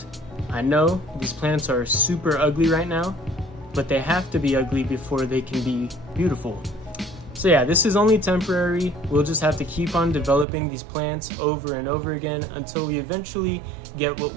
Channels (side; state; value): left; drops out; at 10.5 s